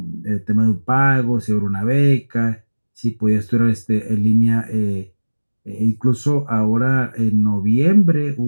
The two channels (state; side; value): inverted; both; correlation -1.00